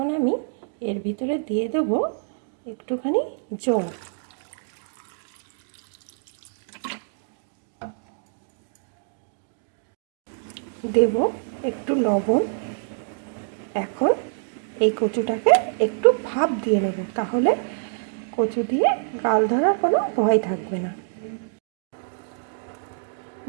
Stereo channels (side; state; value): left; silent; digital silence